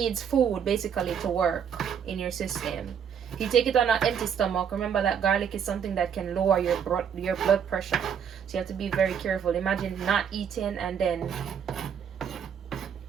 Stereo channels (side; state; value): left; quieter; 7.8 dB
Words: food basically to work in your system. If you take it on an empty stomach, remember that garlic is something that can lower your blood pressure, so you have to be very careful. Imagine not eating and then